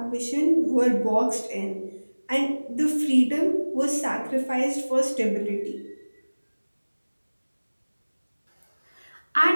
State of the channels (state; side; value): inverted; both; correlation -1.00